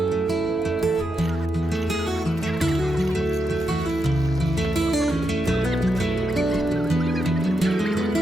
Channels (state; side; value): normal; both; correlation 0.84